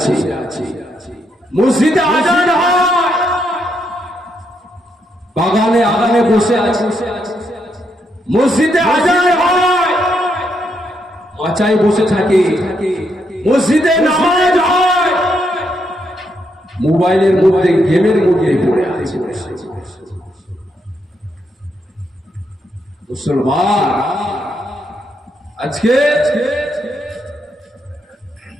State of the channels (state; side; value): normal; both; correlation 0.78